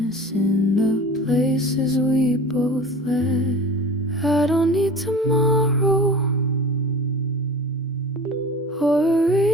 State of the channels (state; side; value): normal; both; correlation 0.37